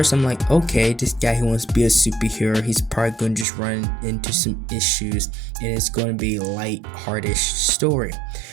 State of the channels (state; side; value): drops out; left; at 3.5 s